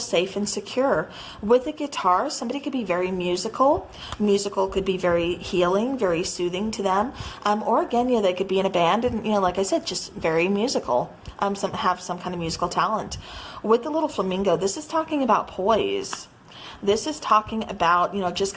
and secure. With the guitar, somebody could be very musical. Musical could be very healing, very soothing to them. Or again, they could be in a band and, like I said, just very musical. Have some kind of musical talent. With the little flamingo, this is talking about poise. This is talking about, just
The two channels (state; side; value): identical; both; correlation 1.00